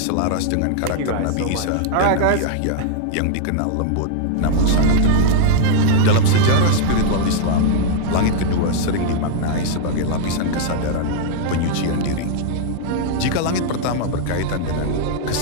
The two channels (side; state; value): both; different; correlation 0.00